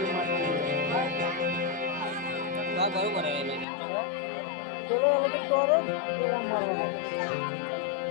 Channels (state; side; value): drops out; right; at 3.7 s